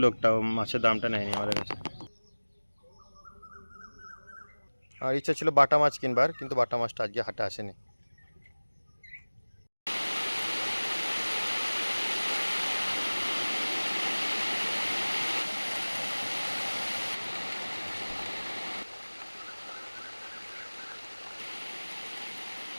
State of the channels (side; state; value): both; inverted; correlation -1.00